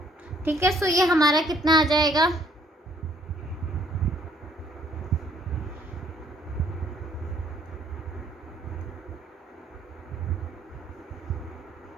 ठीक है, सो ये हमारा कितना आ जाएगा,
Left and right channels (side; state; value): both; normal; correlation 0.63